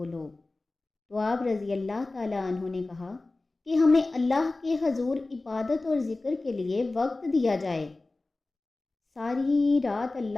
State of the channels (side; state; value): right; quieter; 3.2 dB